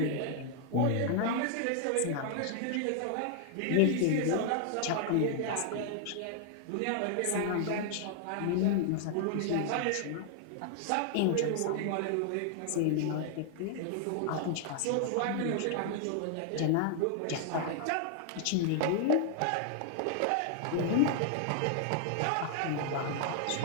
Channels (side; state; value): both; different; correlation 0.00